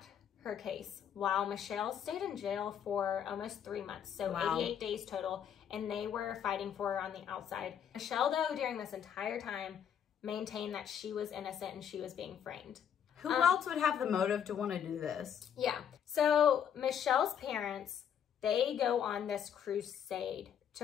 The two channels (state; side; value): quieter; right; 8.7 dB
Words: her case while Michelle stayed in jail for almost 3 months. So 88 days total. And they were fighting for her on the outside. Michelle, though, during this entire time, maintained that she was innocent and she was being framed. Who else would have the motive to want to do this? Yeah. So Michelle's parents, they go on this crusade